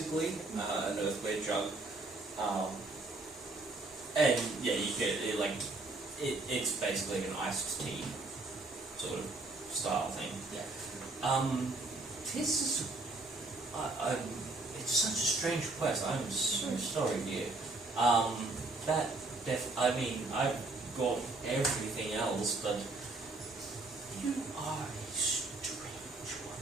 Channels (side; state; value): left; quieter; 3.3 dB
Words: an earthenware jug, and yeah, you get it, it's basically an iced tea sort of style thing. Yeah. This is, it's such a strange quest. I'm so sorry, dear. I mean, I've got everything else, but you are a strange one.